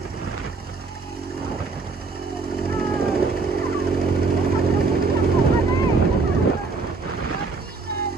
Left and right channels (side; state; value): left; quieter; 4.1 dB